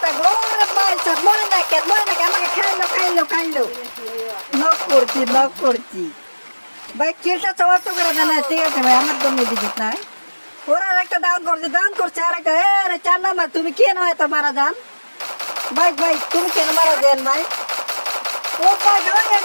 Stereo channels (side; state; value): both; inverted; correlation -1.00